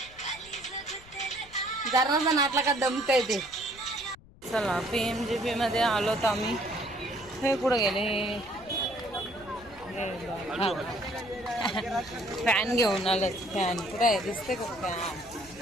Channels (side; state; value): left; noise; rumble, 23 dB below the sound